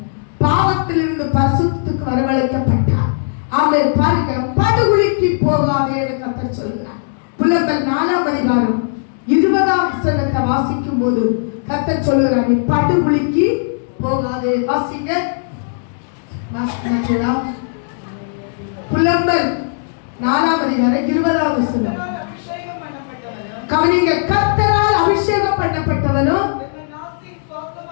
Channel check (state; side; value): silent; right; digital silence